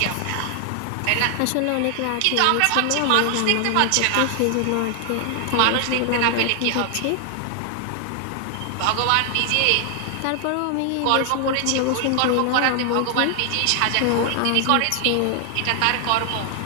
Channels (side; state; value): both; different; correlation 0.00